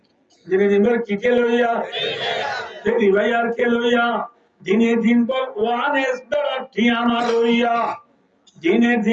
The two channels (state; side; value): identical; both; correlation 1.00